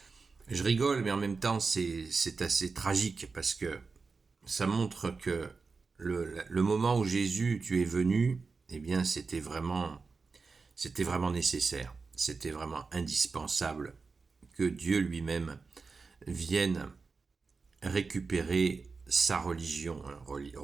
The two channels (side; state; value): left; quieter; 4.5 dB